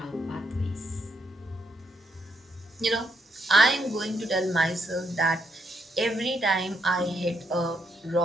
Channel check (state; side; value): normal; both; correlation 0.77